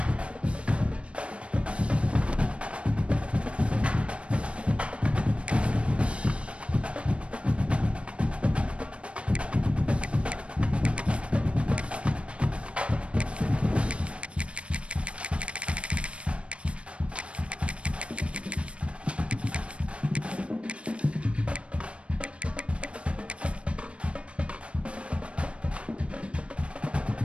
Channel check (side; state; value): left; late; 0.060 ms